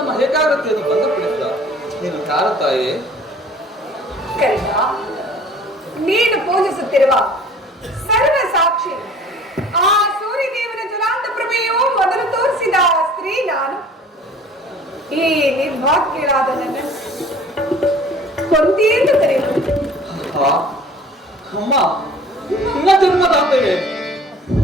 ನಮ್ಮ ಏಕಾಗ್ರತೆಯನ್ನು ಭಂಗಪಡಿಸಿದ ನೀನು ಯಾರ ತಾಯಿ? ಕರಿಯ, ನೀನು ಪೂಜಿಸುತ್ತಿರುವ ಸರ್ವ ಸಾಕ್ಷಿ ಆ ಸೂರ್ಯದೇವನ ಜ್ವಲಾಂತ ಪ್ರಭೆಯು ಮೊದಲು ತೋರಿಸಿದ ಸ್ತ್ರೀ ನಾನು. ಈ ನಿರ್ಭಾಗ್ಯರಾದ ನನ್ನ ಕೊಂತಿಯನ್ನು ಕರೆಯುವುದು. ಅಮ್ಮ, ನಿನ್ನ ಜನ್ಮದಾತೆಗೆ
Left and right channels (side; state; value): both; normal; correlation 0.49